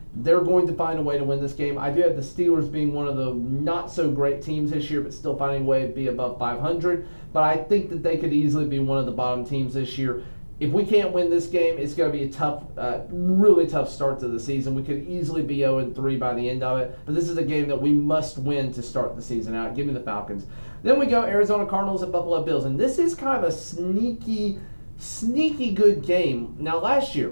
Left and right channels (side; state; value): both; inverted; correlation -1.00